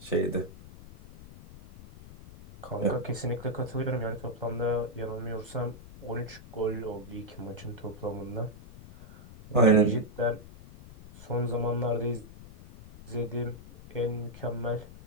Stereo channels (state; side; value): noise; left; rumble, 17 dB below the sound